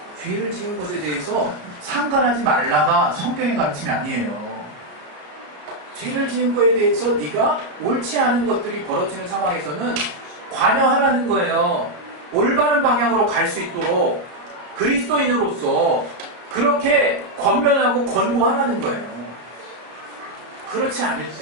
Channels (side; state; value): left; late; 34 ms